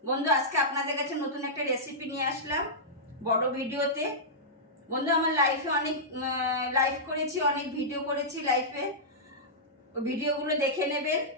বন্ধু, আজকে আপনাদের কাছে নতুন একটা রেসিপি নিয়ে আসলাম বড় ভিডিওতে। বন্ধু, আমার লাইফে অনেক লাইভ করেছি, অনেক ভিডিও করেছি লাইফে। ভিডিওগুলো দেখে নেবেন,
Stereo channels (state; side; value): normal; both; correlation -0.13